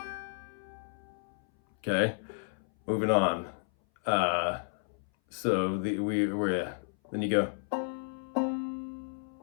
Okay, moving on. So then you go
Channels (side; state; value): right; silent; 56 dB below the other